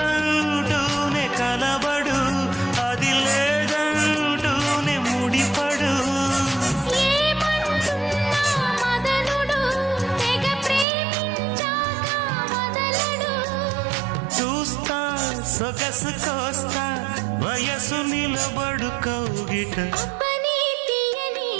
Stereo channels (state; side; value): drops out; left; at 10.9 s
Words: కలబడు అది లేదంటూనే ముడిపడు ఏమంటున్నా మదనుడు తెగ ప్రేమించాక వదలడు చూస్తా సొగసు కోస్తా వయసు నిలబడు కౌగిట అబ్బని తీయని